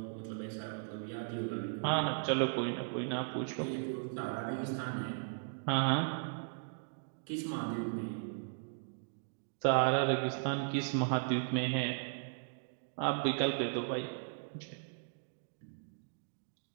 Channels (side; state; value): left; silent; digital silence